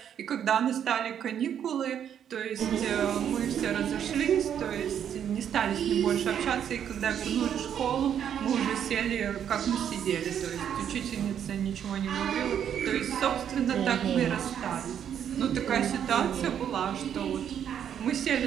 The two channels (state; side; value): quieter; left; 9.0 dB